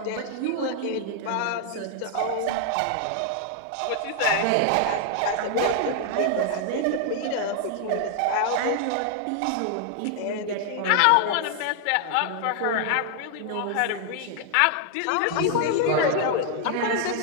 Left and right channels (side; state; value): both; different; correlation 0.00